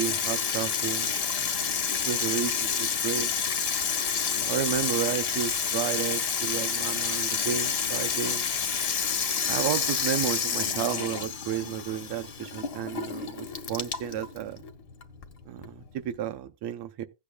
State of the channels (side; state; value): left; late; 1.1 ms